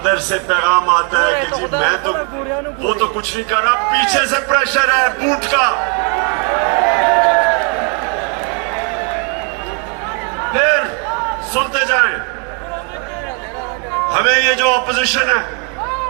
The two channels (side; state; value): left; quieter; 37.9 dB